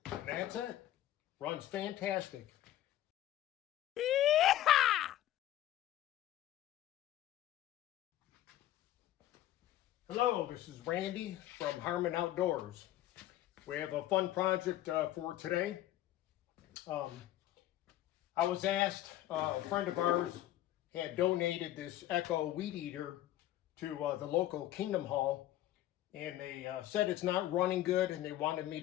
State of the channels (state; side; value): quieter; right; 13.7 dB